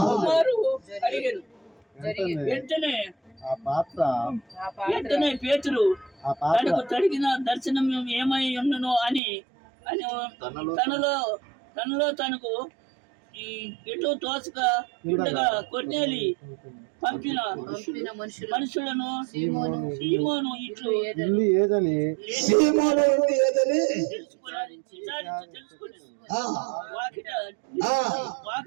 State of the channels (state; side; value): drops out; left; at 9.2 s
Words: మారు అడిగాను. వెంటనే ఆ పాత్ర పేతురు ఆ పాత్ర తనకు తడిగిన దర్శనం ఏమై ఉండును అని అని తనలో తనకు ఈ ఎటు తోచక ఉండగా కొన్నేలి పంపిన మనుషులను సీమోను ఇట్లు ఇల్లు ఏదని సీమోను ఉంది ఏదని తెలుసుకుని ఆ, వాకిట